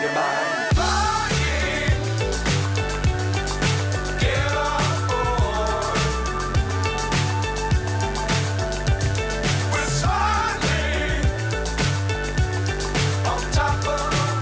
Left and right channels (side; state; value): both; identical; correlation 1.00